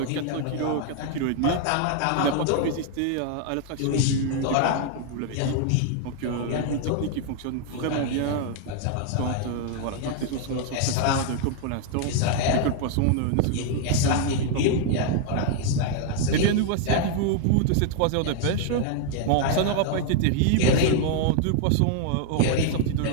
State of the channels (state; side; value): different; both; correlation 0.00